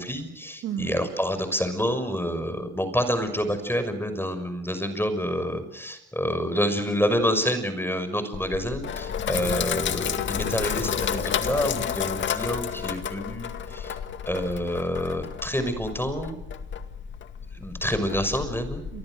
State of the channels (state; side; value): normal; both; correlation 0.55